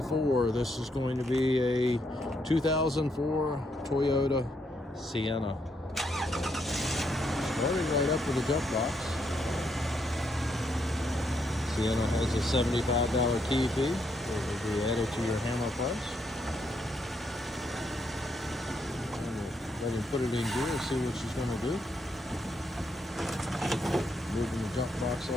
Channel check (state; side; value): normal; both; correlation 0.76